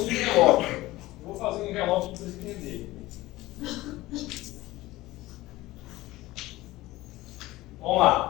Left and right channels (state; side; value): quieter; right; 18.2 dB